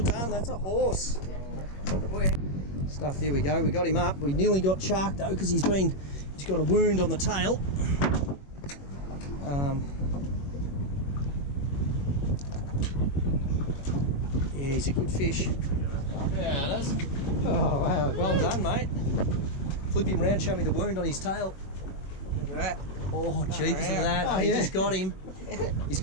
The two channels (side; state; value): right; late; 21 ms